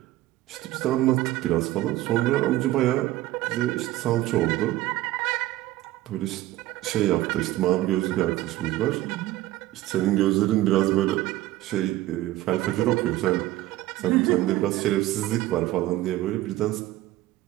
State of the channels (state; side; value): quieter; left; 15.8 dB